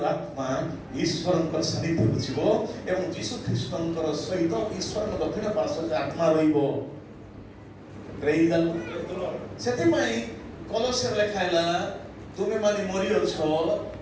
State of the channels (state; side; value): identical; both; correlation 1.00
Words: ଆତ୍ମା ଈଶ୍ୱରଙ୍କର ସାନ୍ନିଧ୍ୟକୁ ଯିବ ଏବଂ ଯୀଶୁ ଖ୍ରୀଷ୍ଟଙ୍କର ସହିତ ଈଶ୍ୱରଙ୍କ ଦକ୍ଷିଣ ପାର୍ଶ୍ୱରେ ଆତ୍ମା ରହିବ। ପ୍ରେଜ୍ ଦ ଲର୍ଡ। ସେଥିପାଇଁ କଲୋସ୍ୟରେ ଲେଖା ହେଲା, ତୁମେ ମାନେ ମରିଅଛ